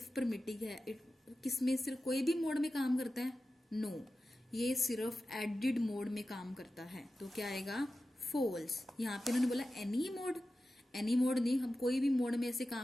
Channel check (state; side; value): normal; both; correlation 0.93